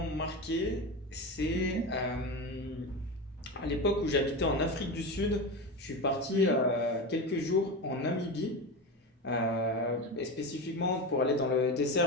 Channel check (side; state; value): both; normal; correlation 0.21